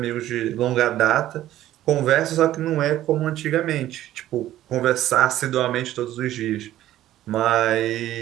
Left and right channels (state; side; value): quieter; left; 13.6 dB